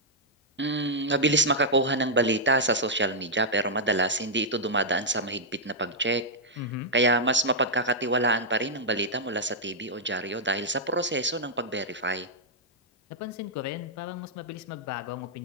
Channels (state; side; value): normal; both; correlation -0.06